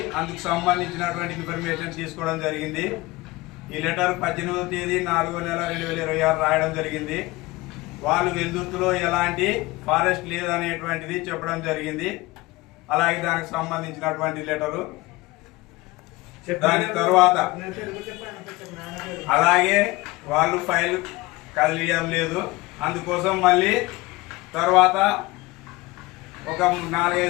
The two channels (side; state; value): right; quieter; 21.0 dB